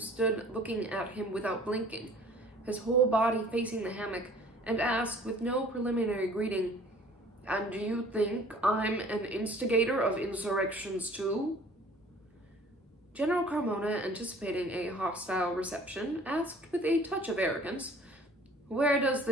looking at him without blinking, his whole body facing the hammock, and asked with no preliminary greeting, "And do you think I'm an instigator of insurrections too?" General Carmona, anticipating a hostile reception, asked with a touch of arrogance, "Where does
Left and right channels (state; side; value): normal; both; correlation 0.51